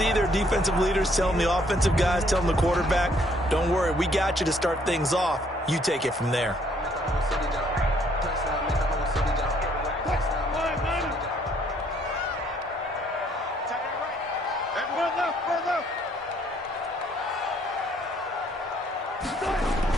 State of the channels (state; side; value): normal; both; correlation 0.65